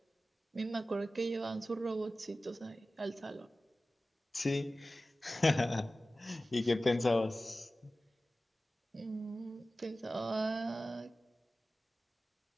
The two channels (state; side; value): normal; both; correlation 0.95